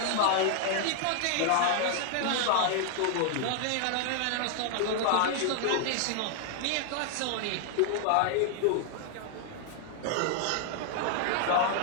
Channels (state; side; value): different; both; correlation 0.00